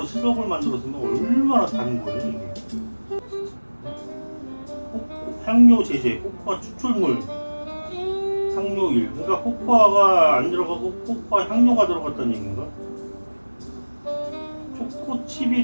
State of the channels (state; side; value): inverted; both; correlation -1.00